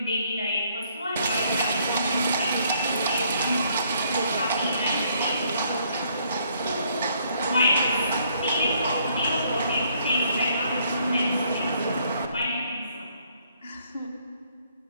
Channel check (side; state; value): both; inverted; correlation -0.67